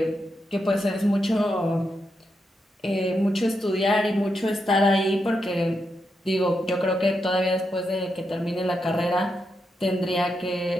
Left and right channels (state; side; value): normal; both; correlation 0.84